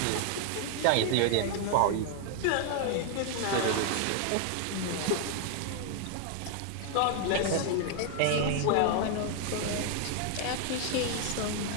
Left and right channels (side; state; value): both; different; correlation 0.00